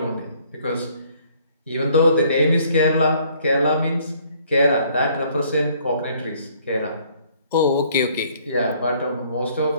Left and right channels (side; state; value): both; inverted; correlation -0.62